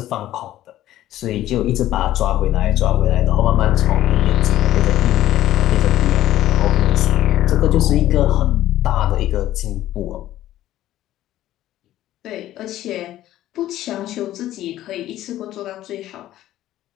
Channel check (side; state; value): right; quieter; 13.8 dB